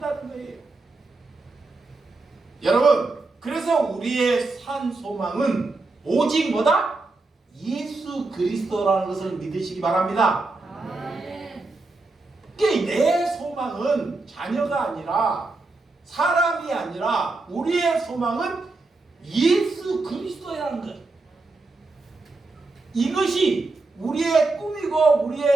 거예요. 여러분, 그래서 우리의 산 소망은 오직 뭐다? 예수 그리스도라는 것을 믿으시기 바랍니다. 내 소망은 자녀가 아니라, 사람이 아니라 우리의 소망은 예수 그리스도라는 것. 이것이 우리의 꿈이고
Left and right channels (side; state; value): left; quieter; 3.4 dB